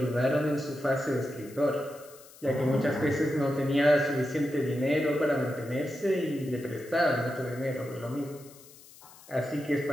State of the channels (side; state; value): left; noise; hiss, 22 dB below the sound